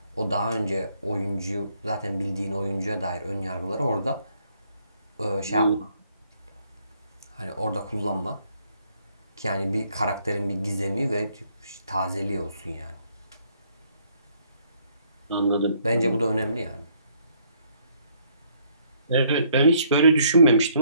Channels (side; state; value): both; inverted; correlation -0.68